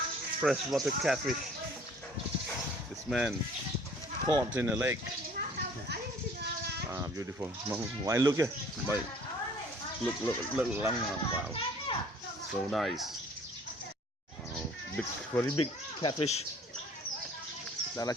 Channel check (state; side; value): normal; both; correlation 0.54